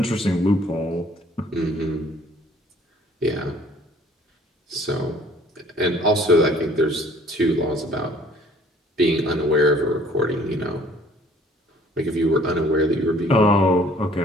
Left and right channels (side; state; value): both; normal; correlation 0.56